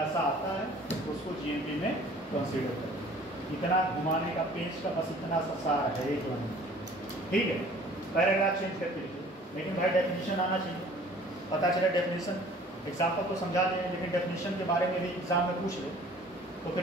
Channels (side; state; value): both; normal; correlation 0.51